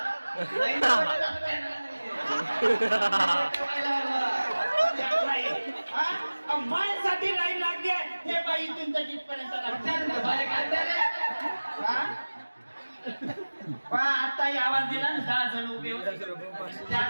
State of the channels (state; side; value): inverted; both; correlation -1.00